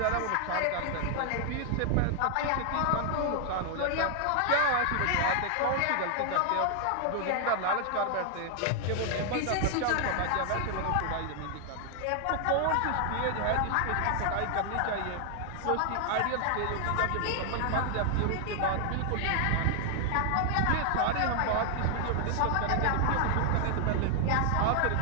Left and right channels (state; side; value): different; both; correlation 0.00